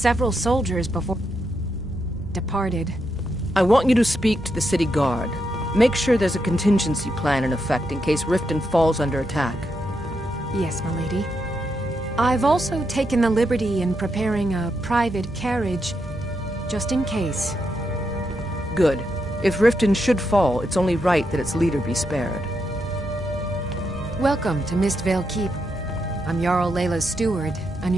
soldiers before it departed. I want you to speak to the city guard. Make sure there's a contingency plan in effect in case Riften falls under attack. Yes, milady. I've also taken the liberty in preparing a private carriage, just in case. Good. If Riften should fall, it's only right that its leader be spared. Welcome to Mistvale Keep. I'm Jarl Layla's steward,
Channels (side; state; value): both; normal; correlation 0.82